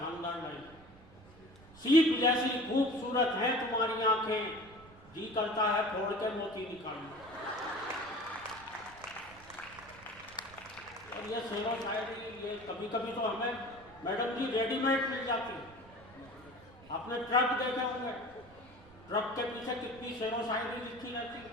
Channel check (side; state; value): right; noise; rumble, 22 dB below the sound